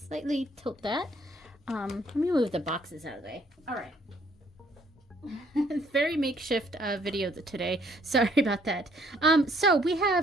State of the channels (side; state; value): both; normal; correlation 0.65